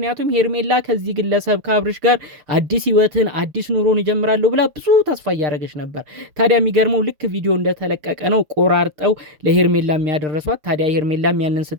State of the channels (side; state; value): left; late; 7.0 ms